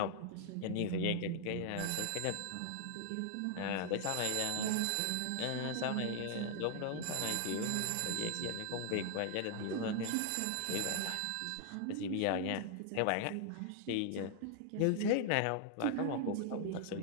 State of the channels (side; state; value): both; different; correlation 0.00